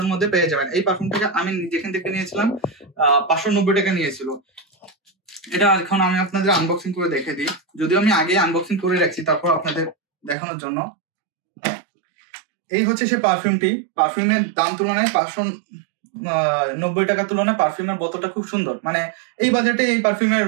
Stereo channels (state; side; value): drops out; left; at 10.4 s